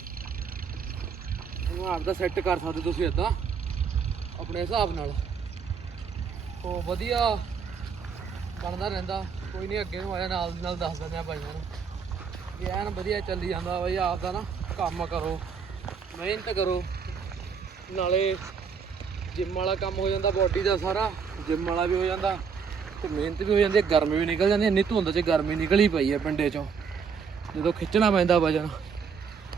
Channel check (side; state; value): left; quieter; 6.2 dB